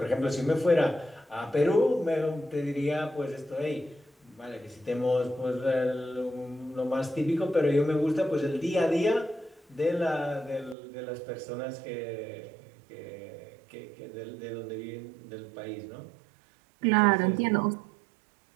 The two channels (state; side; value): drops out; left; at 10.8 s